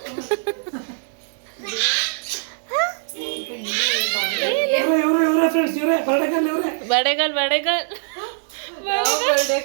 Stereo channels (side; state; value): left; silent; digital silence